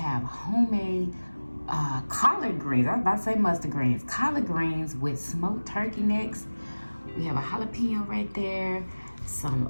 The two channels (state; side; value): inverted; both; correlation -1.00